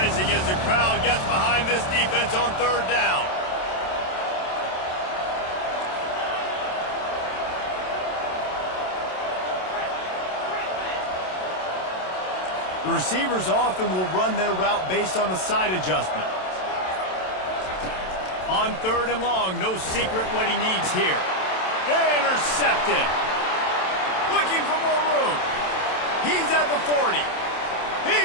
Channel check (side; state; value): right; late; 27 ms